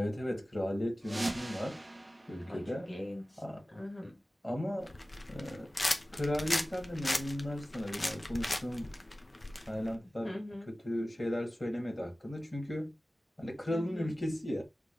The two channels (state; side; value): normal; both; correlation 0.97